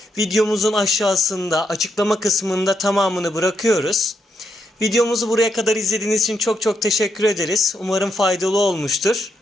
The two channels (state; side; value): normal; both; correlation 0.80